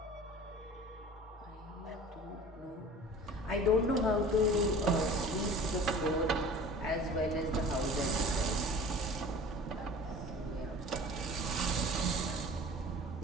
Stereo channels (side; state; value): both; normal; correlation 0.42